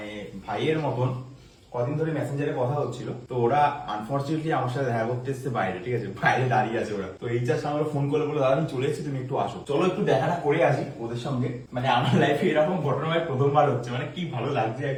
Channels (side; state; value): both; identical; correlation 1.00